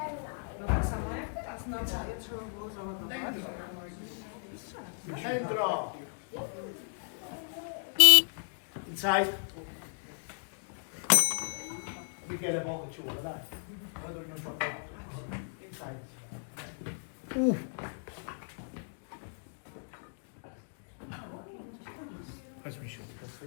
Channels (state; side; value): silent; right; digital silence